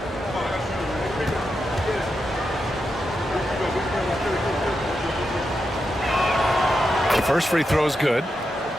The first free throw is good.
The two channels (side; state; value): both; normal; correlation 0.86